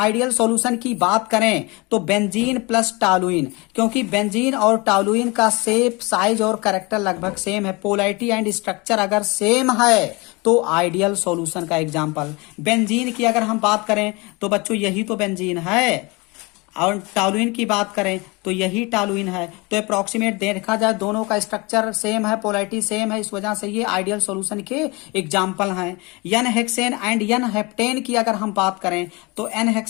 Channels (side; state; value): right; quieter; 26.2 dB